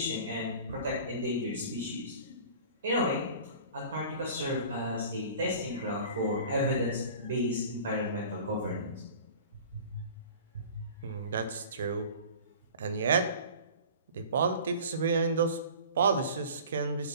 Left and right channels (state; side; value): inverted; both; correlation -0.42